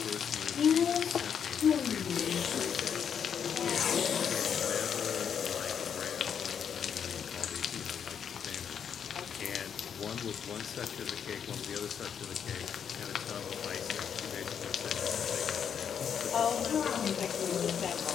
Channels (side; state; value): right; quieter; 7.8 dB